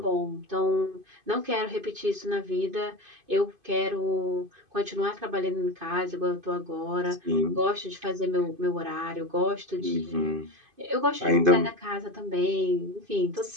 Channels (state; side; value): late; left; 2.5 ms